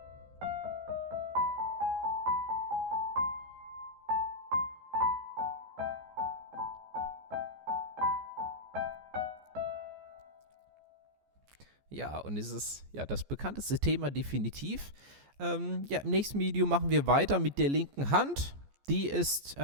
Ja, und es ist ja das bekannteste Thema definitiv. Ja, im nächsten Video machen wir weiter mit der linken Hand. Die ist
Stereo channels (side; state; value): left; late; 14 ms